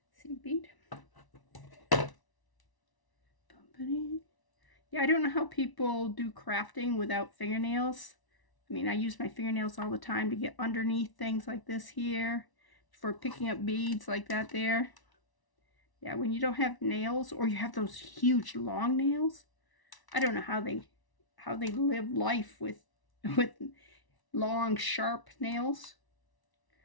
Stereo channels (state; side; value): late; right; 1.0 ms